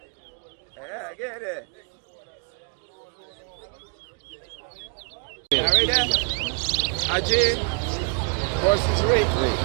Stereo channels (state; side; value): quieter; left; 39.7 dB